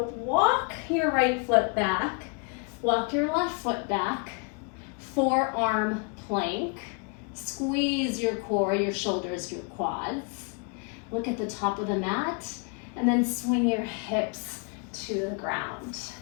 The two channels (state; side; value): quieter; right; 37.9 dB